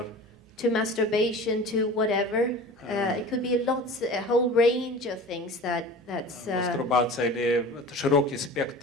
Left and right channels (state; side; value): normal; both; correlation 0.38